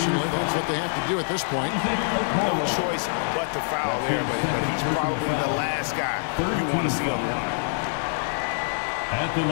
That's what they have to do at this point. No choice but to foul there, but he's probably the last guy you want to see on the line. At the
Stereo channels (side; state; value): right; silent; 62 dB below the other